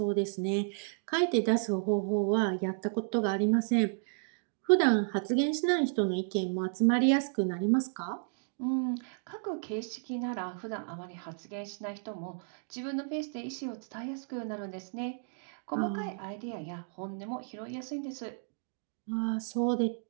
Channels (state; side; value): silent; left; digital silence